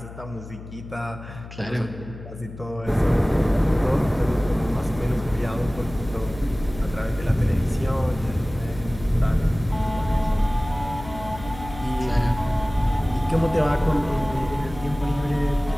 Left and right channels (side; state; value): left; noise; hum, 14 dB below the sound